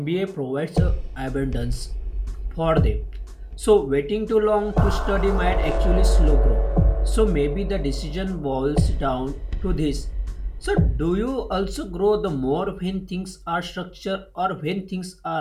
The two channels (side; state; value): both; identical; correlation 1.00